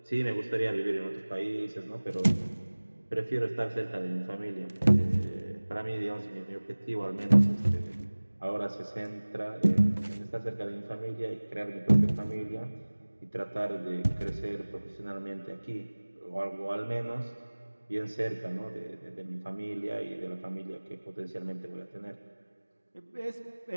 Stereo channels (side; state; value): both; inverted; correlation -1.00